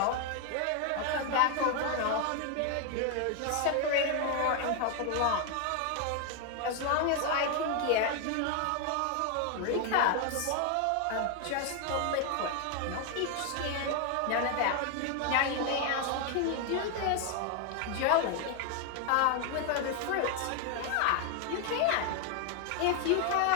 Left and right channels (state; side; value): different; both; correlation 0.01